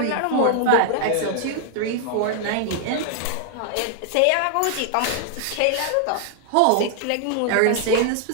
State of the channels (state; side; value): different; both; correlation 0.00